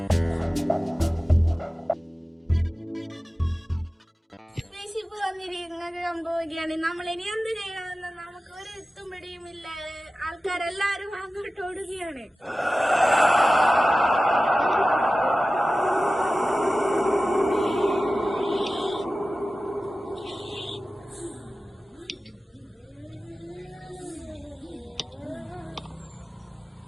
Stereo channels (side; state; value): both; normal; correlation 0.96